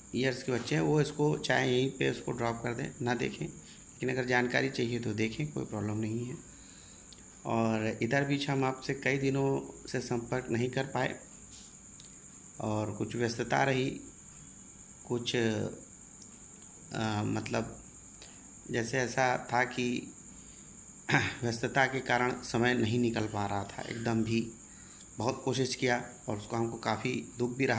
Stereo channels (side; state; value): both; identical; correlation 1.00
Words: ईयर्स के बच्चे हैं वो इसको चाहे यहीं पे उसको ड्रॉप कर दें, ना देखें, लेकिन अगर जानकारी चाहिए तो देखें, कोई प्रॉब्लम नहीं है। और इधर बीच हम आपसे कई दिनों से संपर्क नहीं कर पाए और कुछ व्यस्तता रही, कुछ मतलब जैसे ऐसा था कि व्यस्तता के कारण समय नहीं निकल पा रहा था एकदम भी। बहुत कोशिश किया और उसको हमको काफ़ी दुख भी